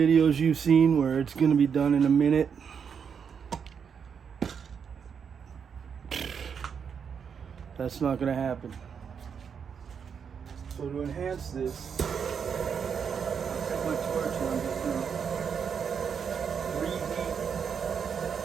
you've seen where it's going to be done in a minute, that's not going to happen. So to enhance this, I'll take my torch and I'm just going to reheat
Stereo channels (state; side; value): quieter; left; 6.9 dB